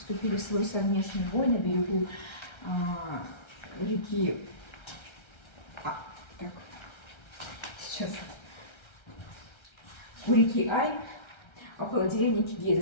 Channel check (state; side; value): late; right; 1.3 ms